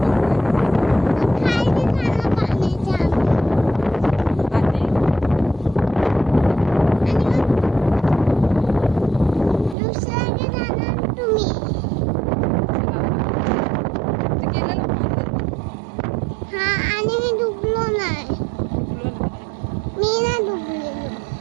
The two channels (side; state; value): left; drops out; at 9.8 s